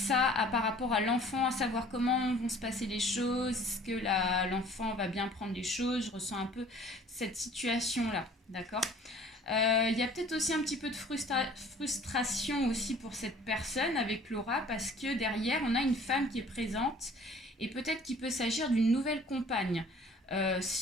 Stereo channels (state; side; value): normal; both; correlation 0.51